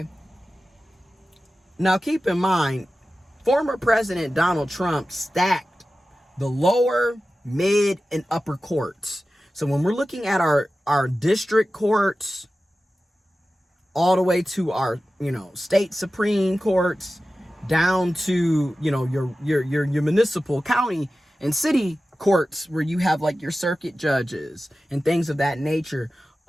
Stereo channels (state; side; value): normal; both; correlation 0.94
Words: Now keep in mind, former President Donald Trump stacked the lower, mid, and upper courts. So when we're looking at our district courts, all the way to our, state supreme courts, down to, your municipal, county, and city courts, where you have like your circuit judges and things of that nature,